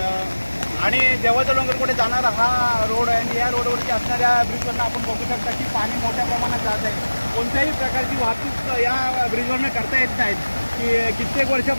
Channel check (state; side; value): inverted; both; correlation -1.00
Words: आणि देवाचा डोंगरकडे जाणारा हा रोड आहे आणि या रोडवरती असणाऱ्या ब्रिजवरनं आपण बघू शकता की पाणी मोठ्या प्रमाणात जात आहे। कोणत्याही प्रकारची वाहतूक या ब्रिजवरनं करता येत नाहीत की कित्येक